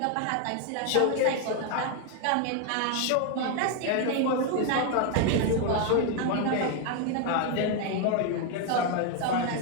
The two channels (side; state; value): both; different; correlation 0.01